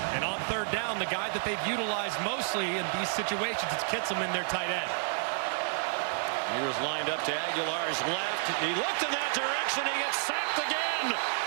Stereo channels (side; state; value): left; silent; 57 dB below the other